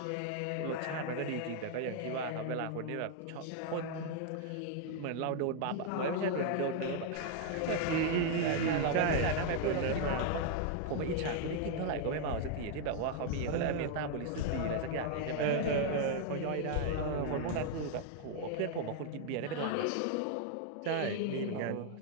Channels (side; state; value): both; different; correlation 0.00